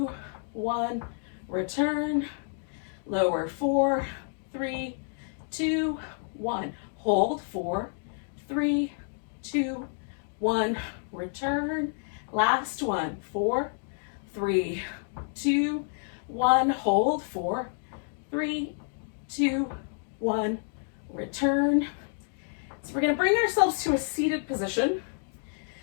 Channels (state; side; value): silent; right; digital silence